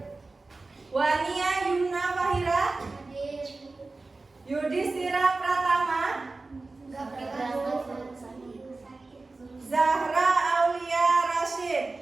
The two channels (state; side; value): quieter; left; 3.5 dB